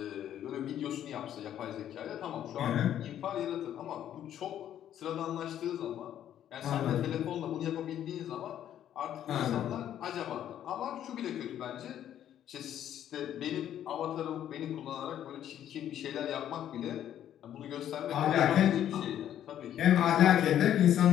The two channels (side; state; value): right; quieter; 10.8 dB